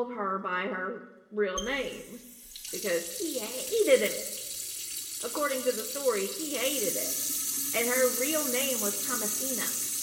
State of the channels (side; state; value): both; identical; correlation 1.00